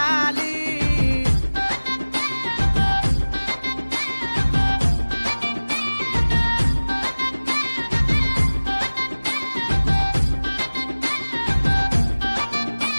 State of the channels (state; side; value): inverted; both; correlation -1.00